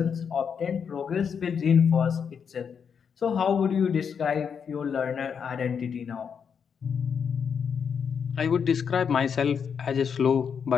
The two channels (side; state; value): right; quieter; 6.9 dB